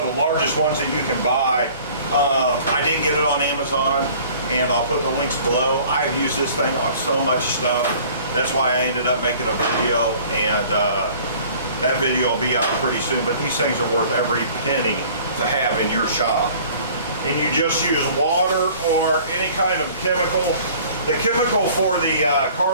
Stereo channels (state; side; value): inverted; both; correlation -0.50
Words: of the largest ones that you can buy. I did get it on Amazon, and I'll put the links below. I've used this thing on so much stuff. That's why I ended up making a video, and that video will be out pretty soon. But these things are worth every penny to have in your shop. And you just use water or any kind of chemical. The chemical for the